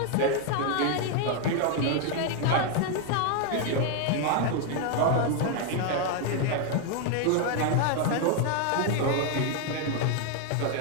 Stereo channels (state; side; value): different; both; correlation 0.01